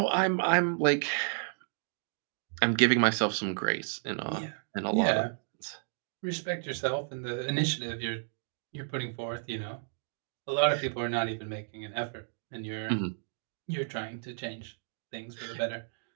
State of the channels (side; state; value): left; silent; digital silence